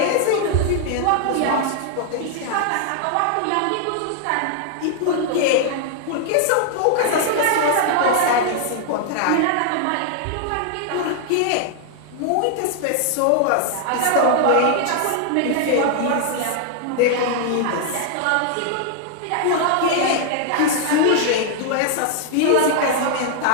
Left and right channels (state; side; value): different; both; correlation 0.00